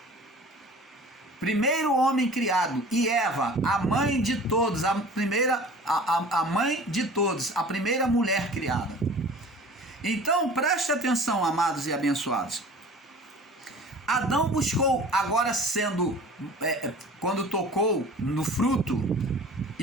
Primeiro homem criado. E Eva, a mãe de todos, a mãe de todos, a primeira mulher criada. Então, preste atenção, amados e abençoados. Adão buscou, agora quando tocou no fruto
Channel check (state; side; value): normal; both; correlation 0.43